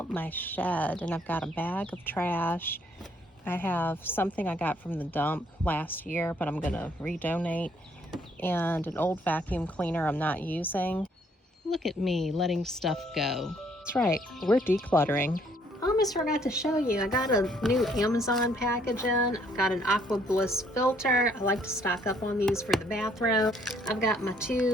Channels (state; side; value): normal; both; correlation 0.66